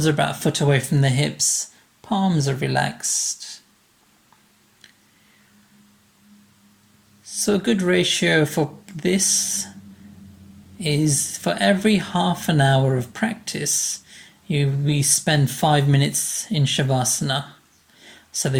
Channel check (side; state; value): both; identical; correlation 1.00